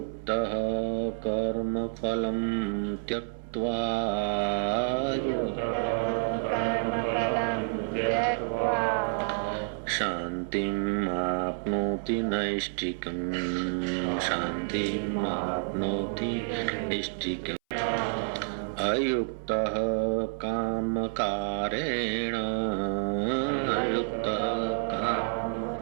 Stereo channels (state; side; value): silent; left; 59 dB below the other